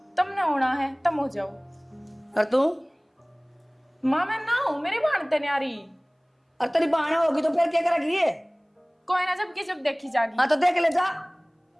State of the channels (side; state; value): both; identical; correlation 1.00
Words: तुमने होना है तुम हो जाओ और तू माँ मैं ना हूँ मेरी भानते न्यारी और तेरी बहन होगी तो फिर क्या करेगी ये कोई ना जब की जब देखी जागी। हाँ तो देख ले जा